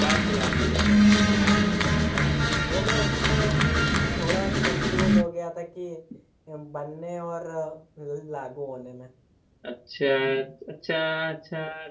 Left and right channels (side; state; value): both; identical; correlation 1.00